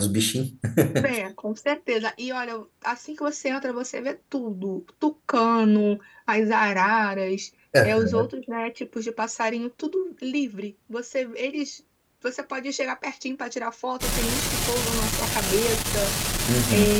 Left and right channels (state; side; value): identical; both; correlation 1.00